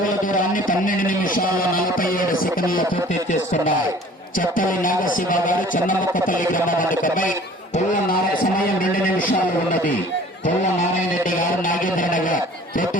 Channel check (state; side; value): normal; both; correlation 0.49